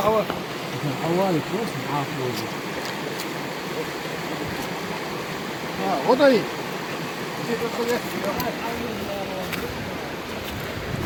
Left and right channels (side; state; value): both; identical; correlation 1.00